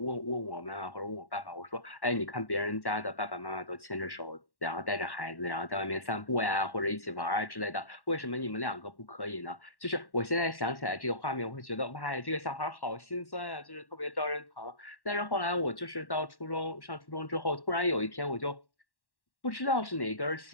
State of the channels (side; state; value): right; late; 1.1 ms